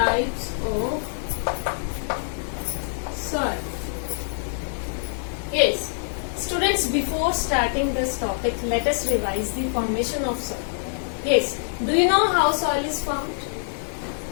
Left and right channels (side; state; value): right; silent; digital silence